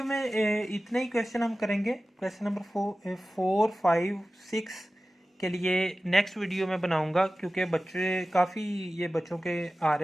में इतने ही क्वेश्चन हम करेंगे। क्वेश्चन नंबर 4 5 6 के लिए नेक्स्ट वीडियो में बनाऊंगा, क्योंकि बच्चे काफ़ी, ये बच्चों के आ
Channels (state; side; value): normal; both; correlation 0.96